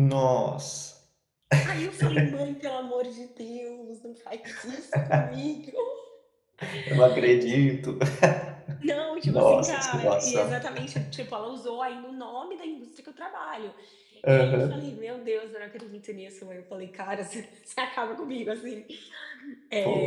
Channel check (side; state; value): both; identical; correlation 1.00